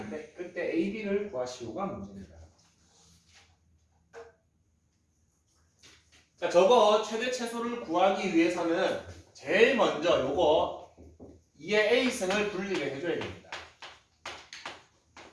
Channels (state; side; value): identical; both; correlation 1.00